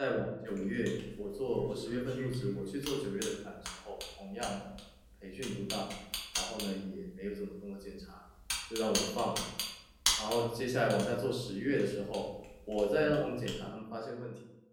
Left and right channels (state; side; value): identical; both; correlation 1.00